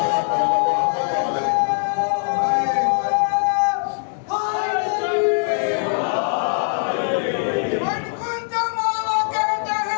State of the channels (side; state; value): right; silent; digital silence